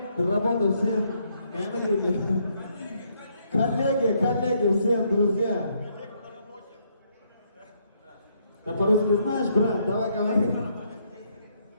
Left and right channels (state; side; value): inverted; both; correlation -0.72